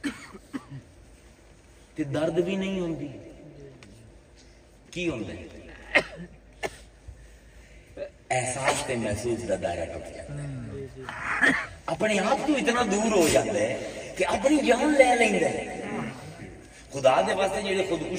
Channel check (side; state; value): both; identical; correlation 1.00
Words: تے درد بھی نہیں ہوندی. کی ہوندا ہے؟ احساس تے محسوس دا دائرہ ٹوٹ جاتا ہے، اپنے آپ تو اتنا دور ہو جاتا ہے کہ اپنی جان لے لیندا ہے. خدا دے واسطے جڑے